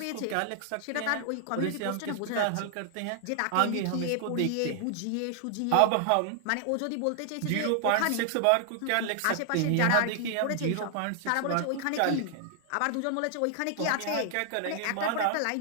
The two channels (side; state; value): both; different; correlation 0.00